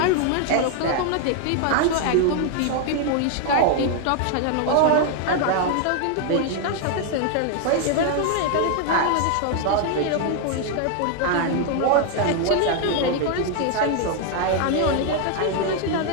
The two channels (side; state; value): both; different; correlation 0.00